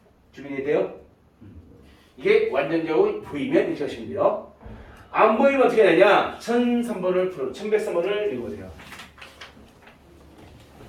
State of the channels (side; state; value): both; identical; correlation 1.00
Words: 준비되어 돼요? 이게 완전적으로 보이면 이렇게 하시면 돼요. 안 보이면 어떻게 되냐? 1103번을 1103번을 읽어보세요.